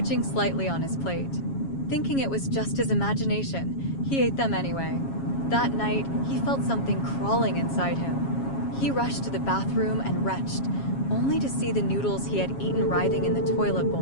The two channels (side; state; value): right; late; 7.3 ms